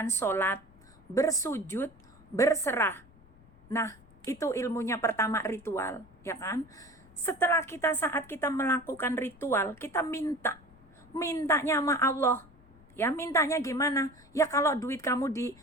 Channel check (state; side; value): noise; left; rumble, 26 dB below the sound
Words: sholat, bersujud, berserah. Nah, itu ilmunya pertama, ritual, ya kan? Setelah saat kita melakukan ritual, kita mintanya sama Allah. Ya, mintanya gimana? Ya kalau duit kamu di